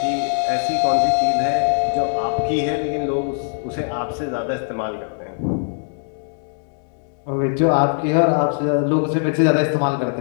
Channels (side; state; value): right; silent; digital silence